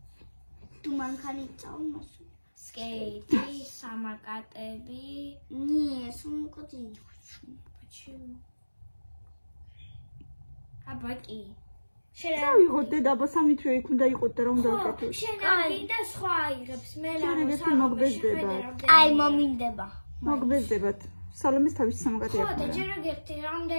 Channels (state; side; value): inverted; both; correlation -1.00